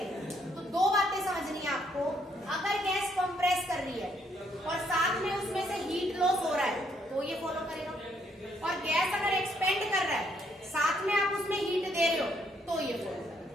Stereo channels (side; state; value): both; normal; correlation 0.71